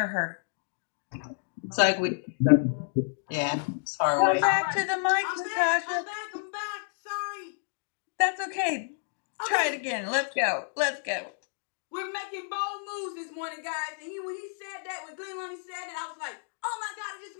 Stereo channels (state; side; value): silent; right; digital silence